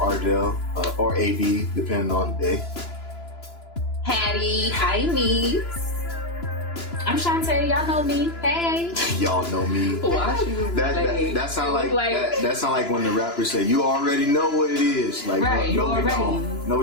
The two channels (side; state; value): right; late; 2.9 ms